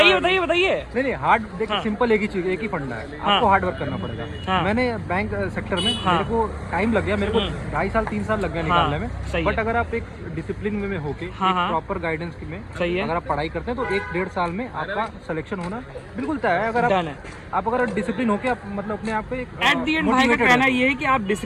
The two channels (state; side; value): identical; both; correlation 1.00